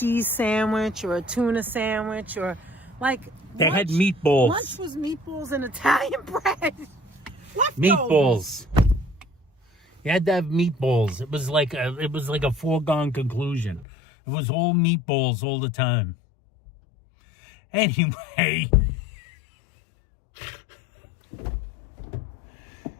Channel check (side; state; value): right; drops out; at 13.9 s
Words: sandwich or a tuna sandwich or, like... They had meatballs. Lunch was meatballs and Italian bread. Leftovers. Meatballs. You had to have meatballs. It was like a foregone conclusion. It was all meatballs all the time. Anyway,